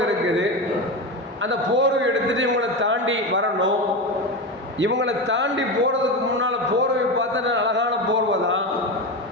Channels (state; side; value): normal; both; correlation 0.19